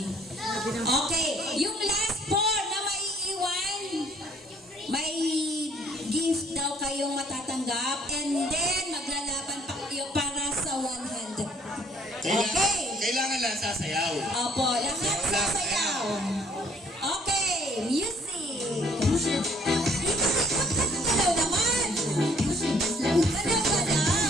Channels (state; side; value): normal; both; correlation 0.61